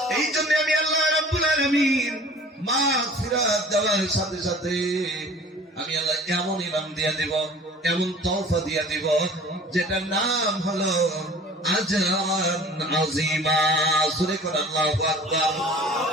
এই জন্য আমি আল্লাহ রাব্বুল আলামিন মাগফিরাত দেওয়ার সাথে সাথে আমি আল্লাহ এমন ইনাম দিয়ে দিব, এমন তওফা দিয়ে দিব, যেটার নাম হলো আজরান আযীমা। সূরা কোন আল্লাহু আকবার।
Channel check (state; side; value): normal; both; correlation 0.46